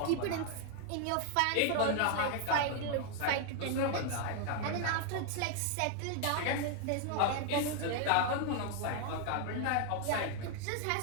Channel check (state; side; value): different; both; correlation 0.00